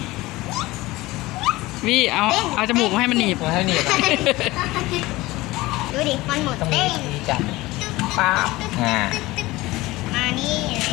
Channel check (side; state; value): right; quieter; 19.6 dB